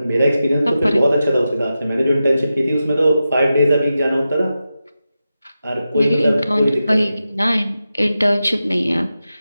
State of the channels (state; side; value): inverted; both; correlation -0.91